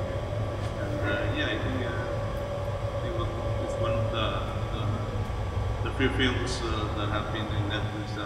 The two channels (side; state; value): both; identical; correlation 1.00